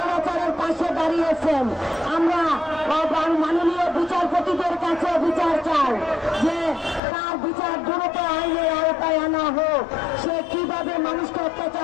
পাশে দাঁড়িয়েছেন? আমরা মাননীয় বিচারপতিদের কাছে বিচার চাই যে তার বিচার দ্রুত আইনের আওতায় আনা হোক। সে কিভাবে মানুষকে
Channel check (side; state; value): right; drops out; at 7.0 s